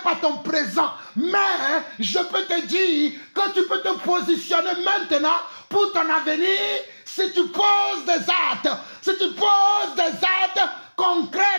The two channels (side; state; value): both; inverted; correlation -1.00